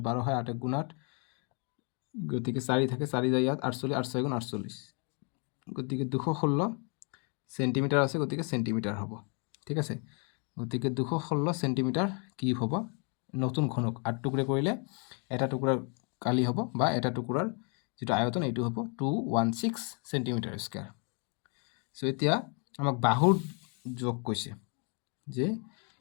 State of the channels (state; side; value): quieter; right; 37.7 dB